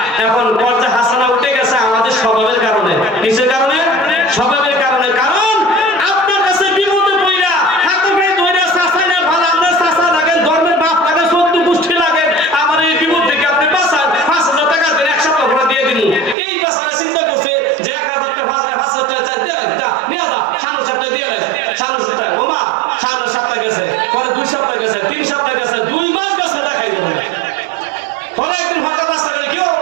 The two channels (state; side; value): drops out; left; at 16.4 s